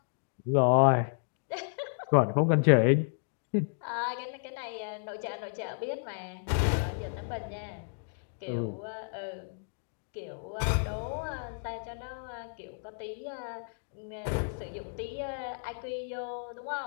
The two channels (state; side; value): silent; right; digital silence